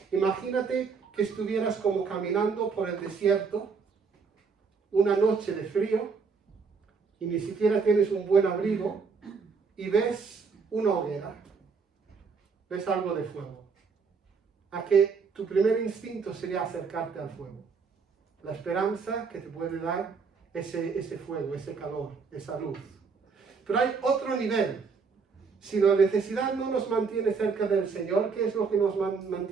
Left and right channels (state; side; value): quieter; left; 5.2 dB